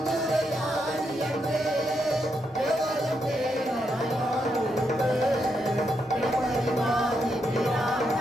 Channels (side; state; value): both; normal; correlation 0.81